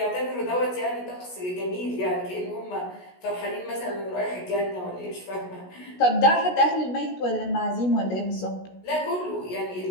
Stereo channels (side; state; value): right; late; 16 ms